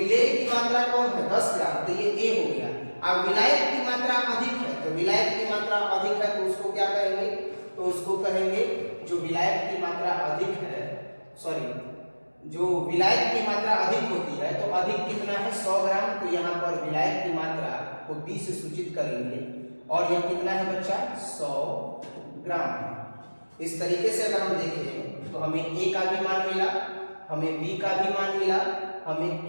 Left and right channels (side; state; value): both; inverted; correlation -1.00